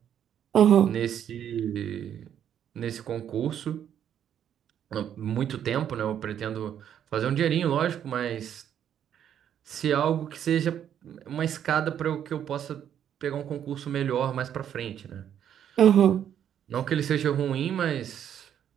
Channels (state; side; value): quieter; left; 9.6 dB